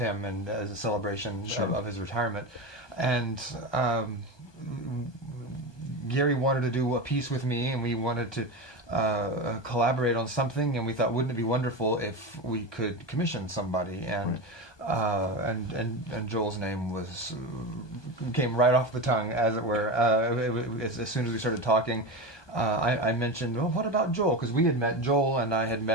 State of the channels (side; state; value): right; late; 1.2 ms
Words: and as a celebration of his retirement. And Gary wanted to do a piece with me, and we wanted to collaborate on something, and we thought, wouldn't it be wonderful if we could commission somebody? And and Joel's name came right off the tongue, as it were. As soon as we started talking, I mentioned, well, what about Joel? Because Joel and I had